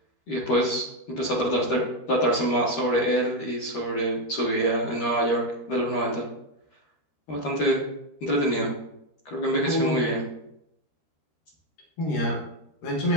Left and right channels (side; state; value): right; late; 13 ms